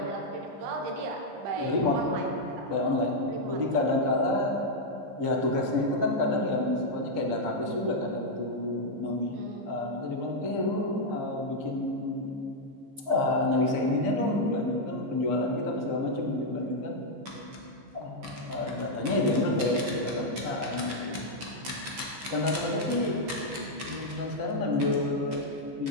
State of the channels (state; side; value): late; left; 14 ms